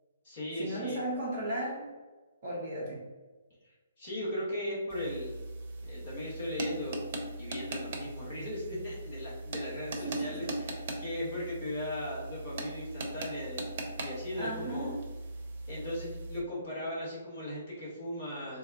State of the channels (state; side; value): inverted; both; correlation -0.63